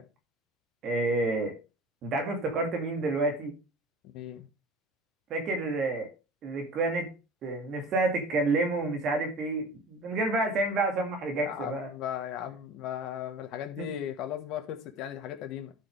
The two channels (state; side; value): normal; both; correlation 0.38